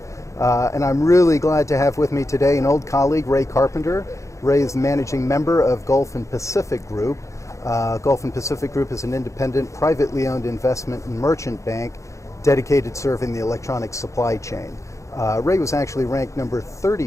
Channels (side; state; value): right; late; 0.15 ms